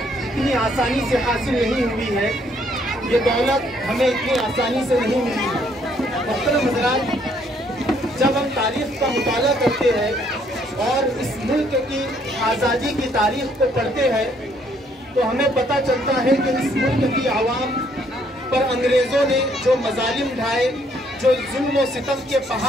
آسانی سے حاصل نہیں ہوئی ہے، یہ دولت ہمیں اتنی آسانی سے نہیں ملی ہے۔ محترم حضرات، جب ہم تاریخ کا مطالعہ کرتے ہیں اور اس ملک کی آزادی کی تاریخ کو پڑھتے ہیں تو ہمیں پتہ چلتا ہے کہ اس ملک کی عوام پر انگریزوں نے جو مظالم ڈھائے، جو ظلم و ستم کے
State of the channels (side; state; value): both; normal; correlation 0.67